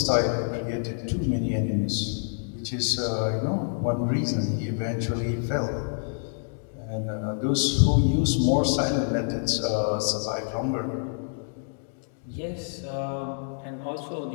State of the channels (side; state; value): right; silent; digital silence